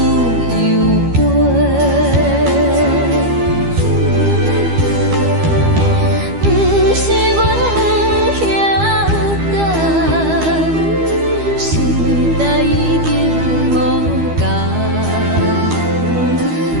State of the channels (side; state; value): left; late; 12 ms